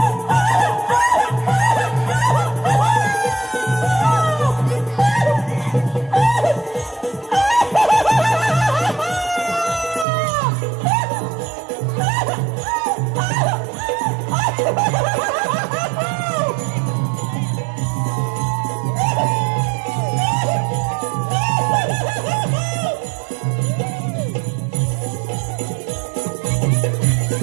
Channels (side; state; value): left; drops out; at 10.1 s